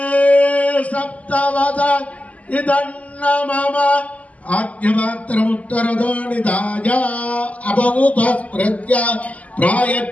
सप्तवद इदन्न मम आद्यमात्रमुत्तरदो निधाय अपौपस्पृत्य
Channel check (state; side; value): late; right; 0.071 ms